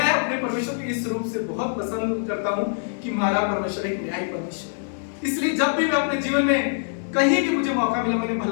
अपने परमेश्वर के इस रूप से बहुत पसंद करता हूँ कि हमारा परमेश्वर एक न्यायी परमेश्वर है। इसलिए जब भी मैं अपने जीवन में कहीं भी मुझे मौका मिला मैंने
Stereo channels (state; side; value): silent; right; digital silence